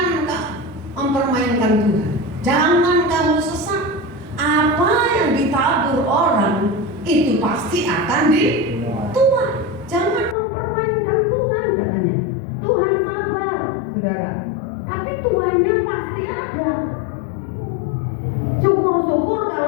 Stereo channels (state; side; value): drops out; right; at 10.4 s